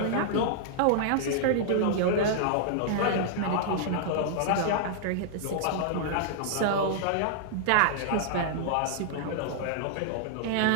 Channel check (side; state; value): both; different; correlation -0.01